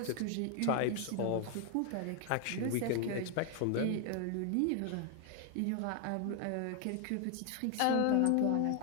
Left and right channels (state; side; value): different; both; correlation 0.00